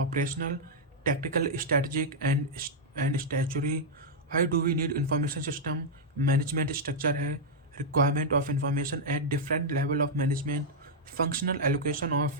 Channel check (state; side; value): normal; both; correlation -0.05